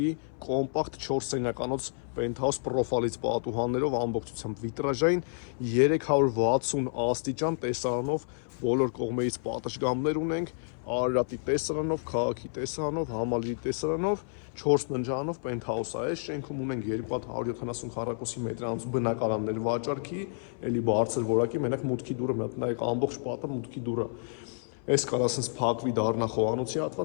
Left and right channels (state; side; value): silent; right; 58 dB below the other